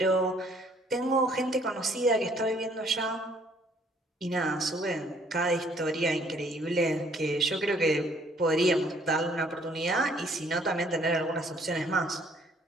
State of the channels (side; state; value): both; normal; correlation 0.61